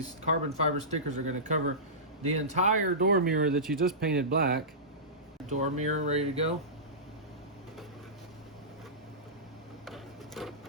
carbon fiber stickers are going to cover the entire door mirror that you just painted black. Door mirror ready to go.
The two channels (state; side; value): normal; both; correlation -0.20